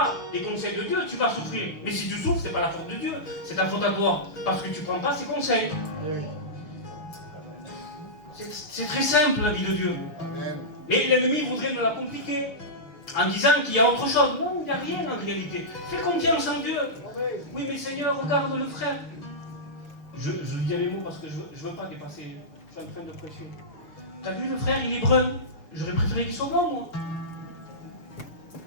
les conseils de Dieu, tu vas souffrir. Mais si tu souffres, ce n'est pas la faute de Dieu, c'est ta faute à toi. Parce que tu ne prends pas ses conseils. C'est très simple la vie de Dieu. Amen. Mais l'ennemi voudrait nous la compliquer en disant qu'il y a autre chose. Non, il n'y a rien en réalité. Fais confiance en Dieu. Amen. Oui, mais Seigneur, regarde le frère. Je lui dis mes mots parce que je ne veux pas dépasser. Je suis en train de prêcher. Tu as vu le frère, il est brun. J'aurais préféré qu'il soit blanc, moi.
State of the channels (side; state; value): right; late; 6.2 ms